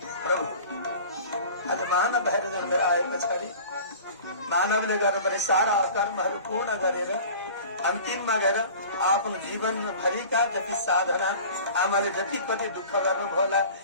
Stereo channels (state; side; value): inverted; both; correlation -0.41